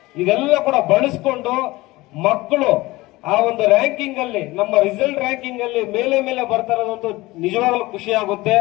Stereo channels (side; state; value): right; quieter; 20.1 dB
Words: ಇದೆಲ್ಲ ಕೂಡ ಬಳಸಿಕೊಂಡು ಮಕ್ಕಳು ಆ ಒಂದು ರ್ಯಾಂಕಿಂಗ್ ಅಲ್ಲಿ, ನಮ್ಮ ರಿಸಲ್ಟ್ ರ್ಯಾಂಕಿಂಗ್ ಅಲ್ಲಿ ಮೇಲೆ ಬರ್ತಾ ಇರೋದಂತೂ ನಿಜವಾಗ್ಲೂ ಖುಷಿ ಆಗುತ್ತೆ.